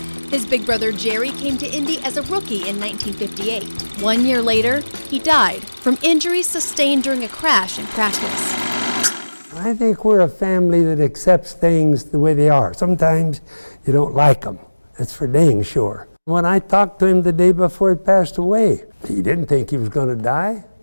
His big brother Jerry came to Indy as a rookie in 1958. 1 year later, he died from injuries sustained during a crash in practice. I think we're a family that accepts things the way they are. Sometimes you don't like them. That's for dang sure. When I talked to him the day before he passed away, he didn't think he was going to die,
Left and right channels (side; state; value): both; inverted; correlation -1.00